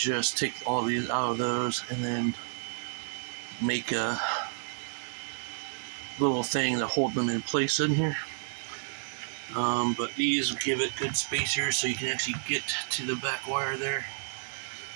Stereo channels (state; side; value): silent; left; 57 dB below the other